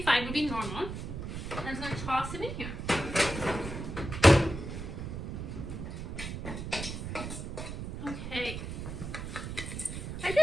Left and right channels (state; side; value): noise; right; rumble, 6 dB below the sound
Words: would be normal. And I'm going to toss it in here. Okay. I